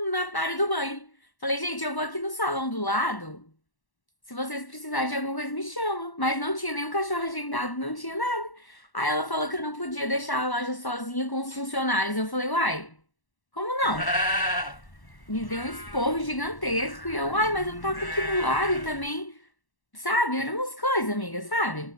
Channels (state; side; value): late; right; 1.1 ms